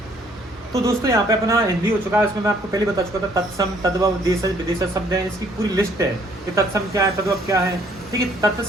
तो दोस्तों यहाँ पे अपना हिंदी हो चुका है, इसमें मैं आपको पहले बता चुका था तत्सम, तद्भव, देशज, विदेशज शब्द हैं, इसकी पूरी लिस्ट है कि तत्सम क्या है, तद्भव क्या है, ठीक है।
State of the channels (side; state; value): both; normal; correlation 0.63